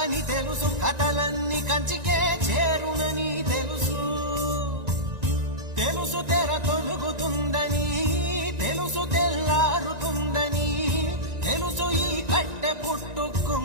అని తెలుసు, కథలన్నీ కంచికే చేరునని తెలుసు, తెలుసు తెర తొలుగుతుందని, తెలుసు తెల్లారుతుందని, తెలుసు ఈ కట్టె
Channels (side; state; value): left; late; 1.9 ms